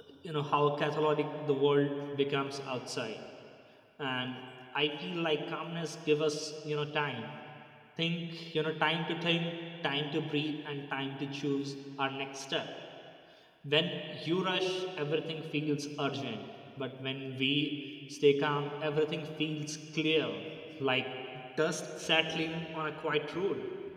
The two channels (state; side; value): identical; both; correlation 1.00